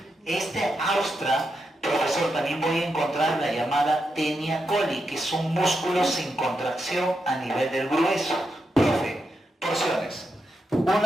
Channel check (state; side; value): normal; both; correlation 0.85